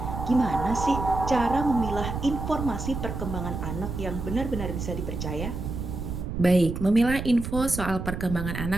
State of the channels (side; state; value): right; noise; rumble, 5 dB below the sound